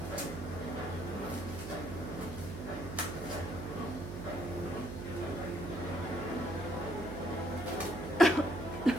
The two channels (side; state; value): right; noise; hum, 7 dB below the sound